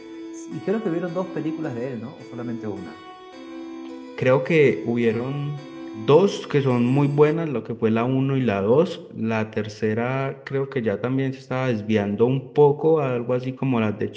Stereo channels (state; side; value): identical; both; correlation 1.00